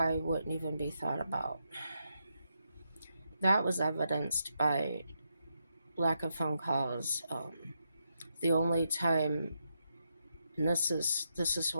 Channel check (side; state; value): both; inverted; correlation -0.82